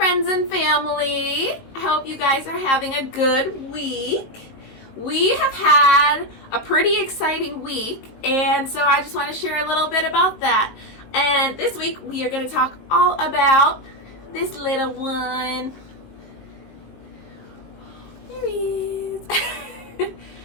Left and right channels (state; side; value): late; right; 19 ms